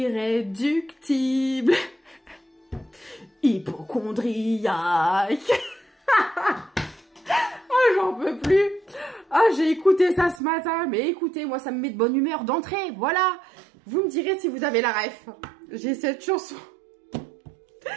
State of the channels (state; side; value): drops out; left; at 10.4 s